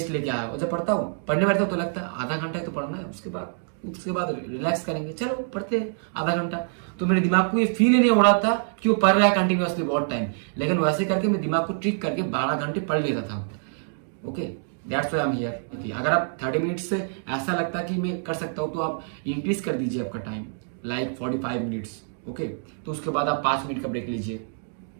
लेके आया, और जब पढ़ता हूँ, पढ़ने बैठता हूँ तो लगता है आधा घंटा ही तो पढ़ना है, उसके बाद रिलैक्स करेंगे, चलो पढ़ते हैं आधा घंटा। तो मेरे दिमाग को ये फील ही नहीं हो रहा था कि वो पढ़ रहा है कंटिन्यूअसली बहुत टाइम, लेकिन वैसे करके मैं दिमाग को ट्रिक करके 12 घंटे पढ़ लेता था। Okay, that's why I am here. अगर आप 30 मिनट से ऐसा लगता है कि मैं कर सकता हूँ, तो आप इंक्रीज कर दीजिए आपका टाइम, लाइक 45 मिनट्स। ओके, तो उसके बाद आप 5 मिनट का ब्रेक लीजिए,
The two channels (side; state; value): left; silent; digital silence